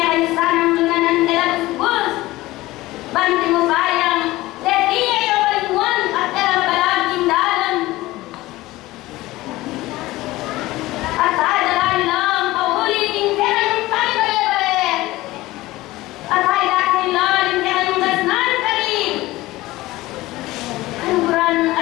ang lunanan elabus bus, banting mo bayang, leti ay awalimuan at elabalaking dalan. At ay dalain lang, pauli, tinggi yung tayo bale-bale. At ay dahil lang, tinggi yung gasnan kali. Kaluguran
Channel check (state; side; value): quieter; right; 18.3 dB